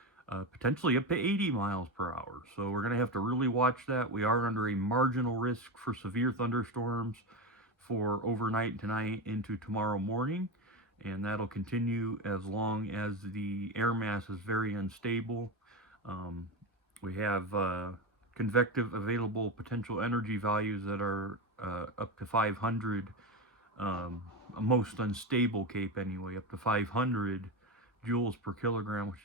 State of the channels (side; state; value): both; normal; correlation 0.17